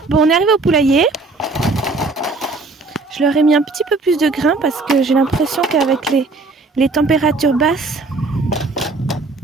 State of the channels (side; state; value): left; quieter; 3.6 dB